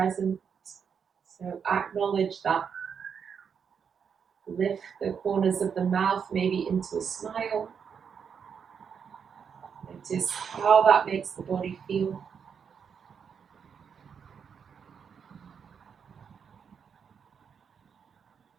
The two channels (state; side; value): quieter; left; 6.9 dB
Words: So acknowledge that. Lift the corners of the mouth maybe into a smile. Notice how that makes the body feel.